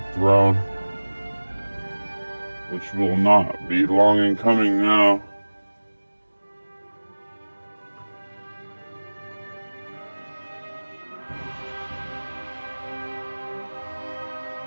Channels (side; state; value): both; inverted; correlation -1.00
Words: throne, which will not be long in coming now.